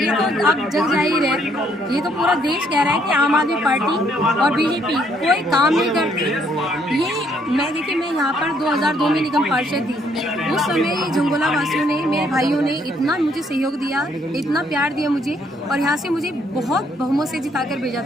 तो अब जग जाहिर है, ये तो पूरा देश कह रहा है कि आम आदमी पार्टी और बीजेपी कोई काम नहीं करती। ये मैं यहाँ पर 2002 में निगम पार्षद थी। उस समय झंगोला वासियों ने, मेरे भाइयों ने इतना मुझे सहयोग दिया, इतना प्यार दिया मुझे और यहाँ से मुझे बहुत बहुमत से जिताकर भेजा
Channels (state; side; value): normal; both; correlation 0.68